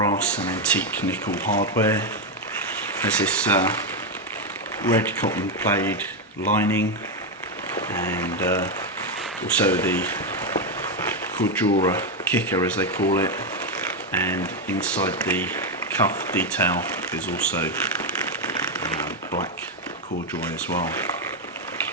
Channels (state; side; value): normal; both; correlation 0.06